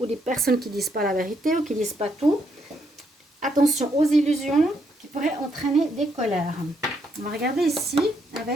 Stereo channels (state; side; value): normal; both; correlation 0.75